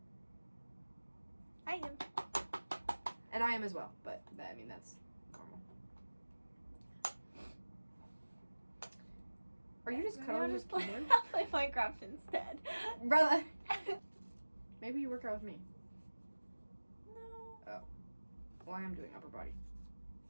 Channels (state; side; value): inverted; both; correlation -1.00